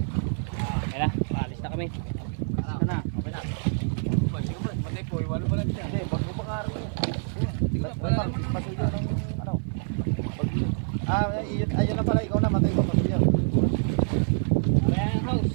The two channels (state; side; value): silent; left; 60 dB below the other